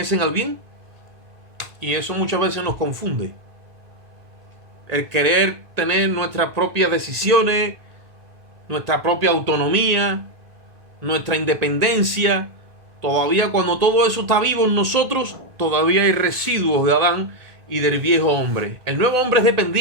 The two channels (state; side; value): late; left; 1.8 ms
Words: al bien, y eso muchas veces nos confunde. El querer tener nuestras propias decisiones, nuestra propia autonomía, nuestra independencia. Todavía cuando todo eso está vivo en nosotros, todavía hay residuos de Adán y del viejo hombre. El nuevo hombre es